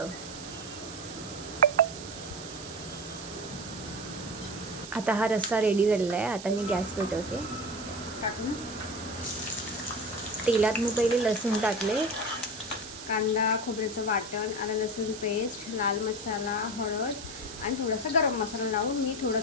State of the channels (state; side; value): noise; right; hiss, 12 dB below the sound